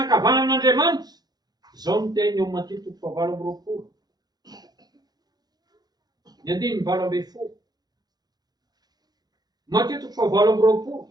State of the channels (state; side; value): late; left; 0.19 ms